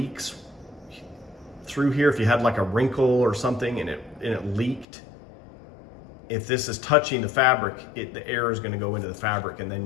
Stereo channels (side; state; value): right; drops out; at 4.9 s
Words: through here, if you had like a wrinkle or something and it leaked, if this is touching the fabric, the air is going to go into the fabric, and